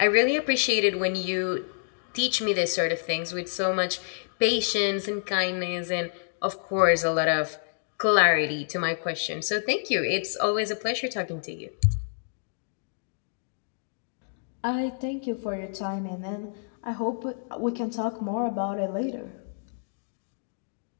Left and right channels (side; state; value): right; silent; digital silence